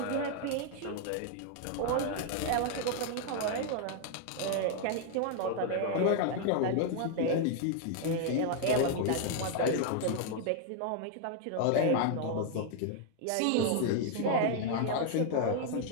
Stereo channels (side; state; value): both; different; correlation 0.00